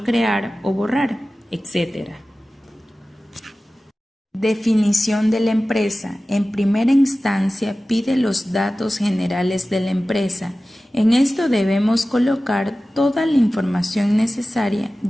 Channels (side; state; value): both; normal; correlation 0.96